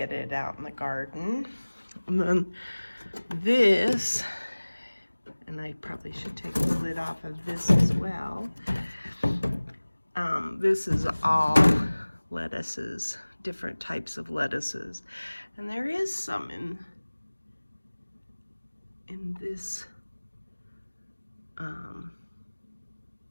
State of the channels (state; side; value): inverted; both; correlation -1.00